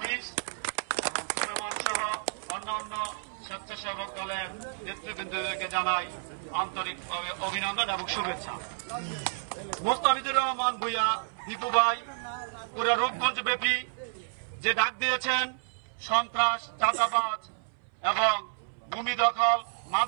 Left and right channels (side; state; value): left; silent; 58 dB below the other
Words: এবং সুলেমান সহ অন্যান্য স্বেচ্ছাসেবক দলের নেতৃবৃন্দকে জানাই আন্তরিকভাবে অভিনন্দন এবং শুভেচ্ছা। মোস্তাফিজুর রহমান ভূঁইয়া দীপু ভাই পুরো রূপগঞ্জ ব্যাপী যে ডাক দিয়েছেন সন্ত্রাস, চাঁদাবাজ এবং ভূমি দখল,